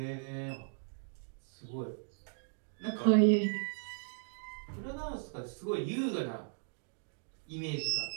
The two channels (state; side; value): silent; left; digital silence